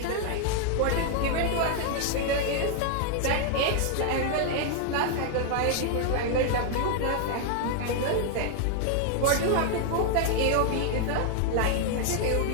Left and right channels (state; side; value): different; both; correlation 0.00